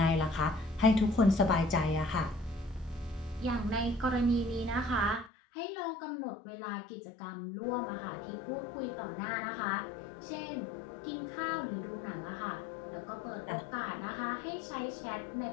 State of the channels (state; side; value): drops out; right; at 5.3 s